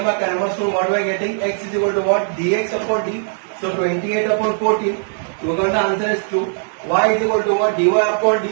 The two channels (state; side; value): silent; left; 62 dB below the other